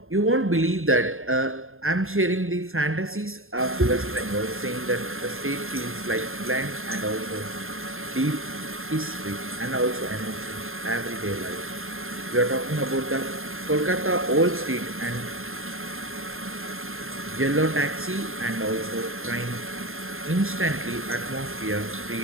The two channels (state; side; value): late; left; 0.61 ms